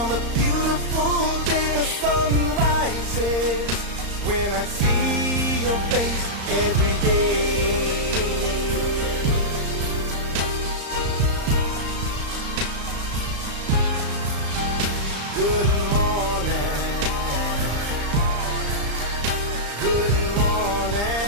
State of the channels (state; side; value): late; left; 35 ms